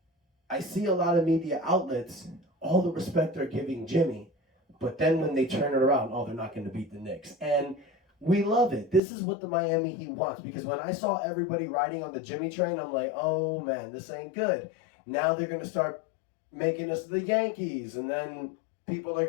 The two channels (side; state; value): right; drops out; at 9.0 s